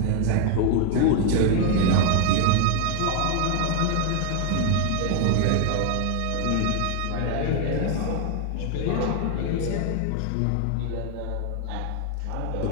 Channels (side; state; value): both; different; correlation 0.00